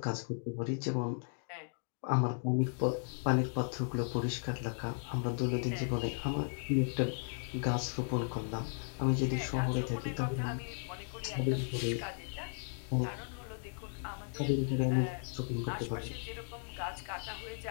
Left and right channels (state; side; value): silent; right; 54 dB below the other